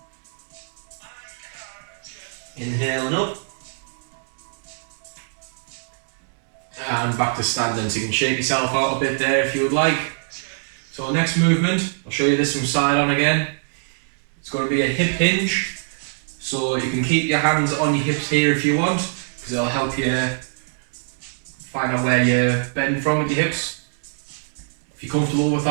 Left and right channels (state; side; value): silent; left; digital silence